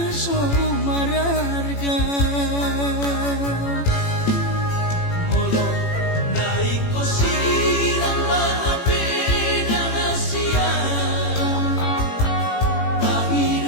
so mararga molo nai ko sirang maapi na Asia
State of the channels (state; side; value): late; right; 18 ms